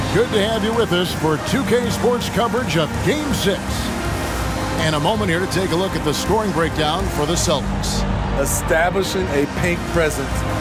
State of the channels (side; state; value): both; identical; correlation 1.00